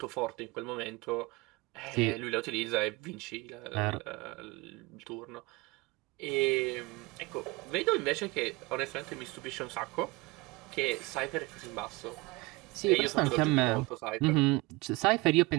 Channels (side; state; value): left; quieter; 23.8 dB